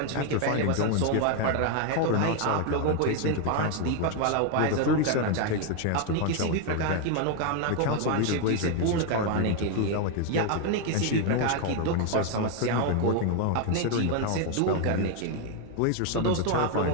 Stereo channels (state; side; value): different; both; correlation 0.01